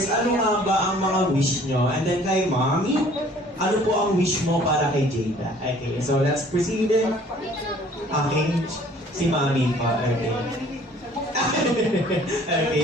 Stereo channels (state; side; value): normal; both; correlation 0.54